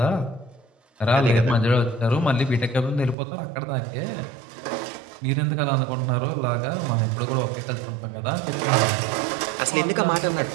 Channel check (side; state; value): left; drops out; at 3.2 s